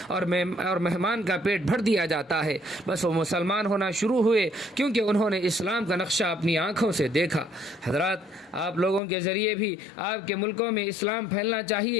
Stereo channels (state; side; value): drops out; right; at 9.0 s